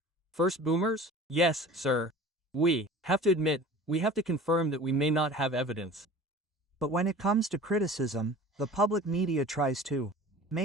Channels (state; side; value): normal; both; correlation 0.41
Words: first boomers? Yes, sir. We have to admit, we have to confirm that we may not have evidence. But when it comes to criticism, the public media tries to